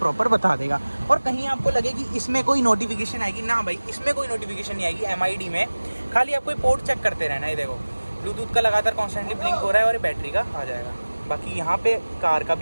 बता देगा। और कहीं आपको लगे कि इसमें कोई नोटिफिकेशन आएगी ना, भाई इसमें कोई नोटिफिकेशन नहीं आएगी MID में, खाली आपको पोर्ट चेक करते रहना है। देखो ब्लूटूथ का लगातार कॉन्स्टेंटली ब्लिंक हो रहा है और बैटरी का आ जाएगा। बाकी यहाँ पे कार का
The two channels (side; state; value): both; inverted; correlation -1.00